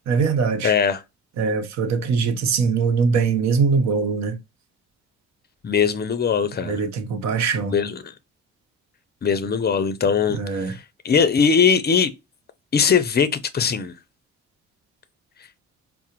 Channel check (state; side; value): normal; both; correlation 0.22